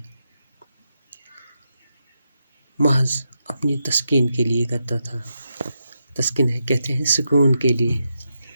محض اپنی تسکین کے لیے کرتا تھا۔ تسکین ہے کہتے ہیں سکون کے لیے۔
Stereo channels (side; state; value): both; inverted; correlation -0.85